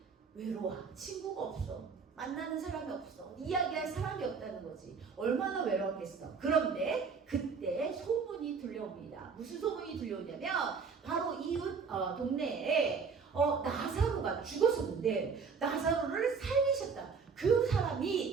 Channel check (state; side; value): quieter; left; 5.5 dB